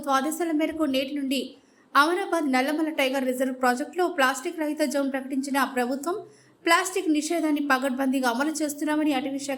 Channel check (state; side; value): identical; both; correlation 1.00